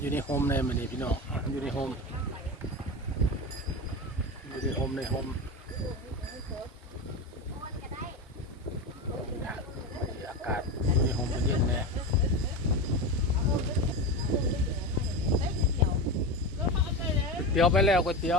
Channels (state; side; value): normal; both; correlation 0.22